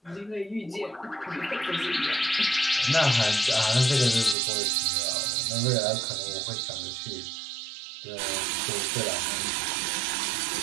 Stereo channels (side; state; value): left; drops out; at 4.4 s